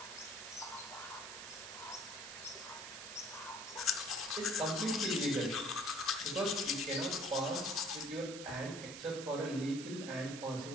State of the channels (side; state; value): right; noise; hiss, 9 dB below the sound